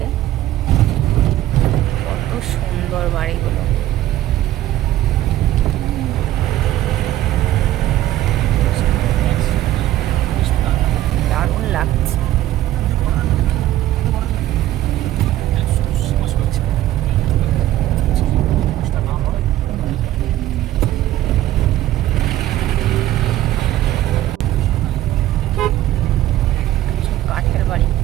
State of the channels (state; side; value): quieter; left; 14.1 dB